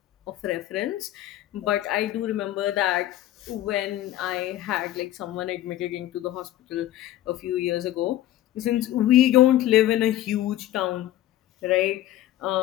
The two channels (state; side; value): quieter; right; 13.8 dB